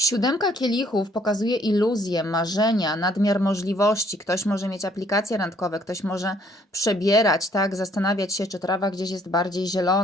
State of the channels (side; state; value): both; normal; correlation 0.64